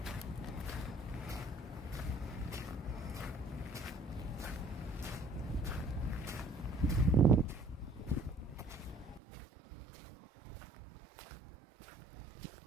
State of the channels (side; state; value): left; drops out; at 9.2 s